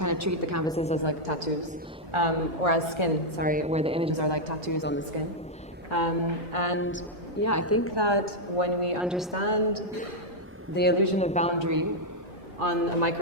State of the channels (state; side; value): normal; both; correlation -0.02